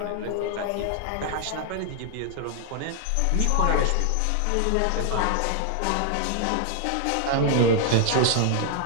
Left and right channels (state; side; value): different; both; correlation 0.00